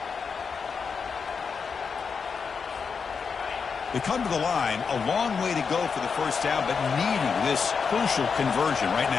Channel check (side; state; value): right; quieter; 5.7 dB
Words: They come to the line, a long way to go for the first down, but needing this crucial conversion right